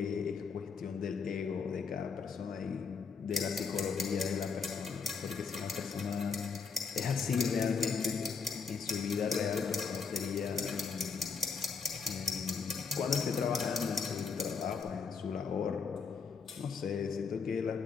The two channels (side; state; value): right; quieter; 5.5 dB